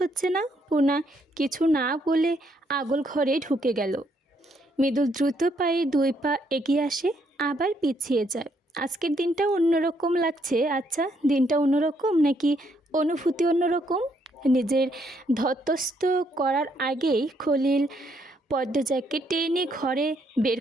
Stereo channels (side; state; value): both; normal; correlation 0.72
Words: না। পুনা কিছু না বলে আগল ঘরে ঢুকে গেল। মৃদুল দ্রুত পায়ে ২ পা এগিয়ে আসে, আবার পিছিয়ে যায়। আজকের দিনটা অন্যরকম লাগছে। আচ্ছা, দিনটা অন্যরকম নাকি অনুভূতি অন্যরকম? নিজের ধতস্থ করার আগেই খলিল পদ্মজাকে টেনে ঘরে বের